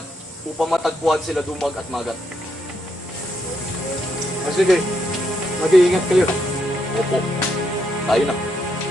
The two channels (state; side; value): normal; both; correlation 0.78